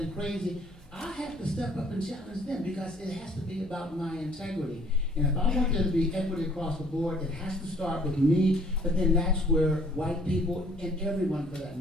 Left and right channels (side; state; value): both; normal; correlation 0.59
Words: crazy, I have to step up and challenge them because it has to be about my integrity. And if I want there to be equity across the board, it has to start with me, but then that's where white people, and everyone for that